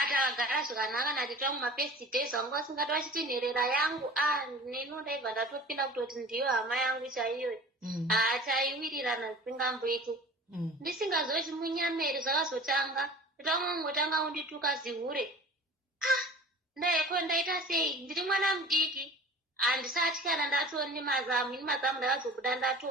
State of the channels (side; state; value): both; normal; correlation 0.41